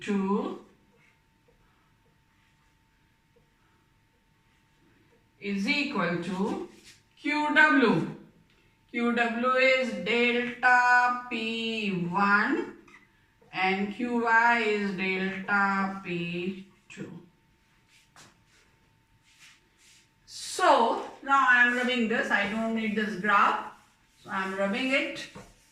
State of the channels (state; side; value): identical; both; correlation 1.00